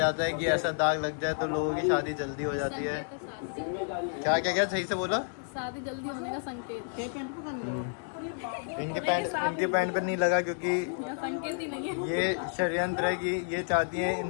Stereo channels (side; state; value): right; silent; digital silence